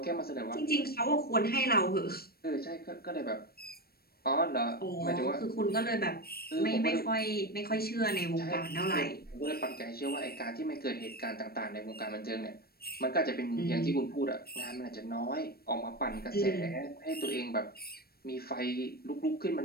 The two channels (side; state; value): right; late; 0.44 ms